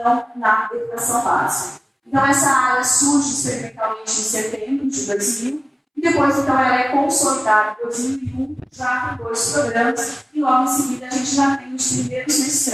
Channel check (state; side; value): identical; both; correlation 1.00